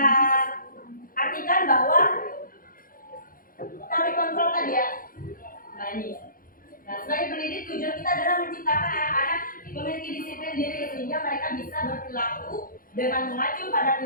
artikan bahwa teori kontrol tadi ya. Nah ini. Nah, sebagai pendidik tujuan kita adalah menciptakan anak-anak memiliki disiplin diri sehingga mereka bisa berperilaku dengan mengacu pada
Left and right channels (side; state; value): right; late; 0.41 ms